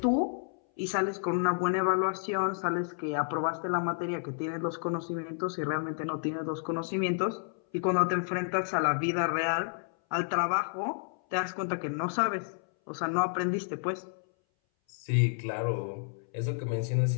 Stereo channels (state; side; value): silent; right; 57 dB below the other